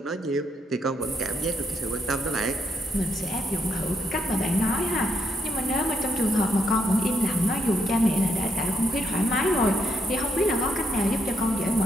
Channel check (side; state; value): both; normal; correlation 0.77